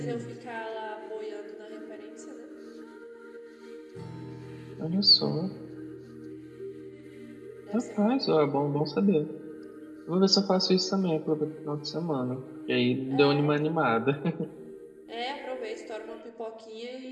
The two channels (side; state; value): both; identical; correlation 1.00